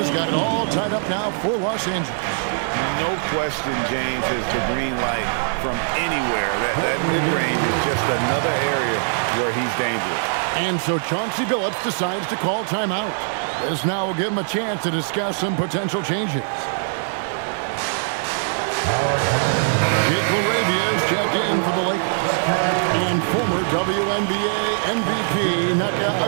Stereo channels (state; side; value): silent; left; digital silence